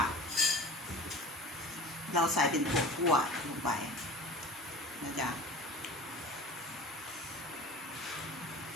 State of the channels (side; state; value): both; normal; correlation 0.39